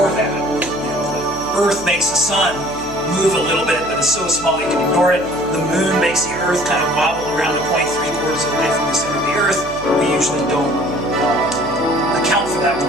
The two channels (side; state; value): right; noise; hum, 17 dB below the sound